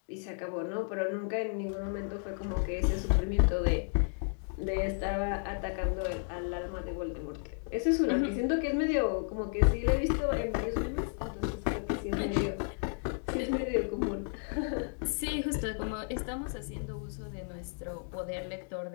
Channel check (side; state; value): right; silent; 56 dB below the other